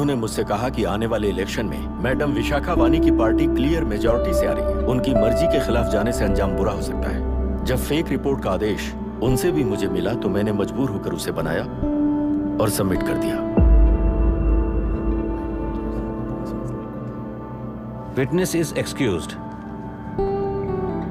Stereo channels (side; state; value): both; identical; correlation 1.00